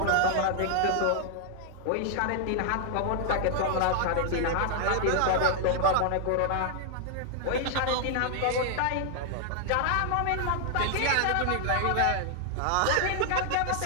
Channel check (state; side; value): different; both; correlation 0.00